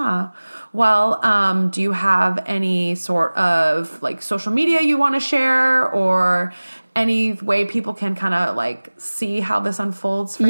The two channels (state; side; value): inverted; both; correlation -1.00